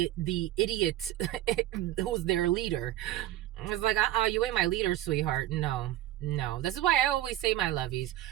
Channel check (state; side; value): quieter; left; 14.2 dB